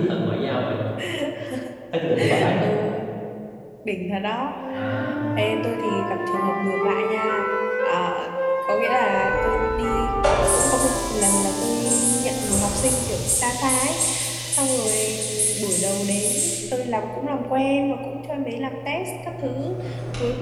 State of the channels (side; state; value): both; identical; correlation 1.00